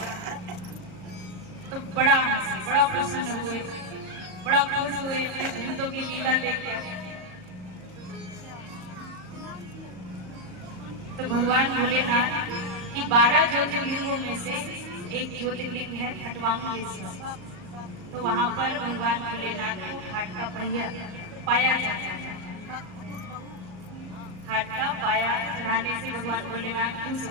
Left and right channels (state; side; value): late; left; 39 ms